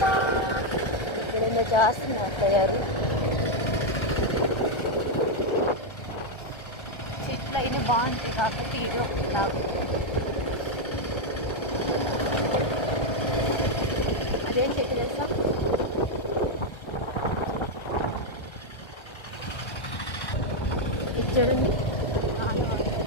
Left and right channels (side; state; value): right; late; 1.3 ms